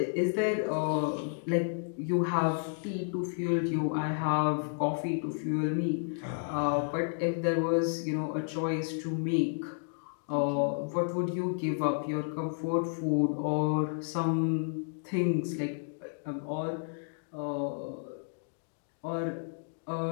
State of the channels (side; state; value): right; silent; digital silence